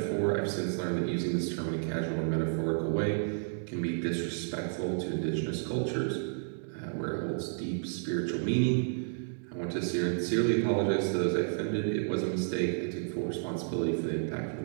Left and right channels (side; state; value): left; silent; digital silence